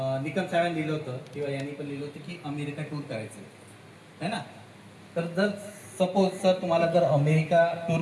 निकम साहेबांनी लिहिलं होतं किंवा यांनी पण लिहिलं होतं की अमेरिका टूर करायचं आहे ना. तर जर सपोज सर तुम्हाला जर अमेरिका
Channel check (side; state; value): both; identical; correlation 1.00